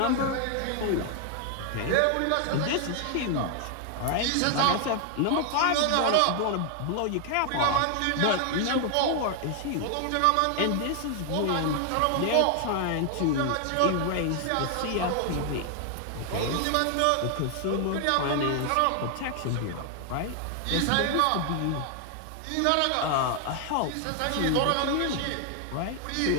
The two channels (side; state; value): both; different; correlation 0.00